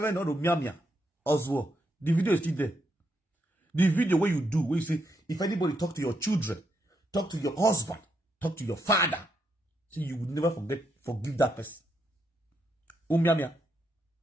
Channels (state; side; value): normal; both; correlation 0.79